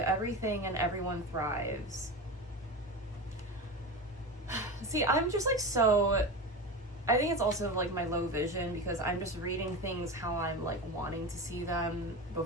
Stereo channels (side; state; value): both; normal; correlation 0.24